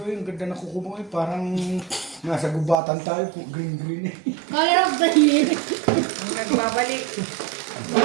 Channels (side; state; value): left; drops out; at 2.8 s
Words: yung ganda na kuko mo eh. Parang nasa gubatan tayo. Green eh. Color of the year. Ang nagbabalik.